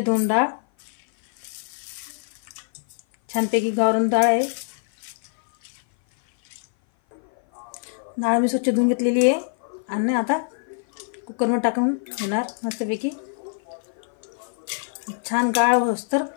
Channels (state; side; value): silent; right; 56 dB below the other